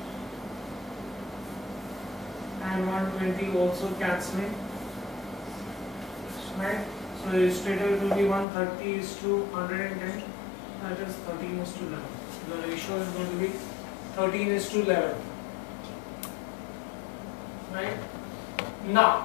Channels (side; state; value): right; drops out; at 8.5 s